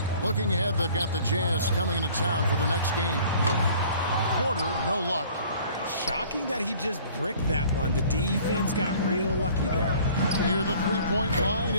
Looking ahead, they've got the Jazz coming into town for the next game. Porter, no luck. Shocking that he just bricked that one. The defense got real lucky there. Near the three-point line,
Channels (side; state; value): both; inverted; correlation -0.51